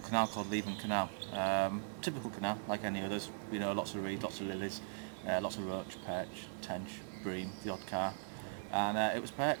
canal called Leven Canal. Typical canal, like any others, you know, lots of reed, lots of lilies, lots of roach, perch, tench, bream, the odd carp, and it was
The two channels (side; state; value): left; silent; digital silence